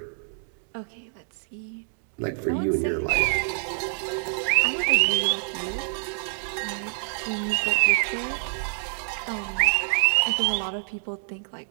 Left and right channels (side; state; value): left; silent; digital silence